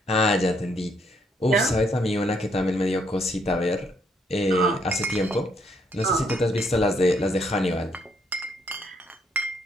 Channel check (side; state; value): both; normal; correlation 0.71